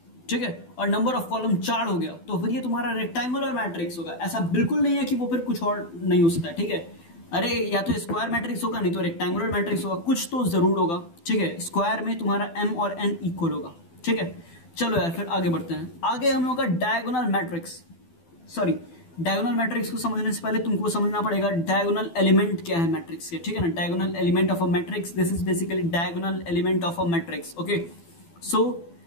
ठीक है, और नंबर ऑफ कॉलम 4 हो गया तो फिर ये तुम्हारा रेक्टेंगुलर मैट्रिक्स होगा। ऐसा बिल्कुल नहीं है कि वो फिर कुछ और नहीं हो सकता है, ठीक है। अरे या तो स्क्वायर मैट्रिक्स होगा नहीं तो रेक्टेंगुलर मैट्रिक्स होगा, कुछ तो जरूर होगा, ठीक है। स्क्वायर में तुम्हारा m और n इक्वल होगा, ठीक है। चलो यार फिर आगे बढ़ते हैं। आगे हम लोग का diagonal matrix, sorry diagonal matrix को समझने से पहले तुमको समझना पड़ेगा डायगोनल एलिमेंट क्या है मैट्रिक्स के, ठीक है ना। Diagonal element of a matrix, this is basically diagonal element of a matrix, okay. So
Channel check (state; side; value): late; right; 12 ms